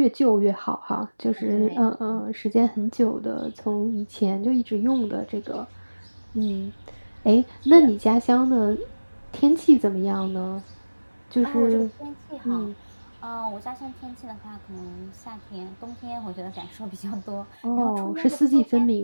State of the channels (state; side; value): inverted; both; correlation -1.00